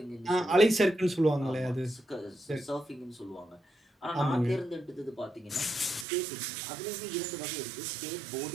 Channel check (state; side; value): drops out; left; at 6.1 s